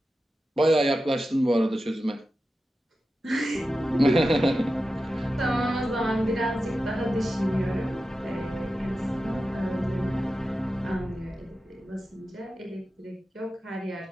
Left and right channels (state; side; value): normal; both; correlation 0.92